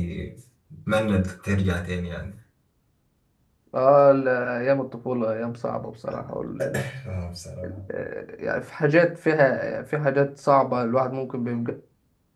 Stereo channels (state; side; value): identical; both; correlation 1.00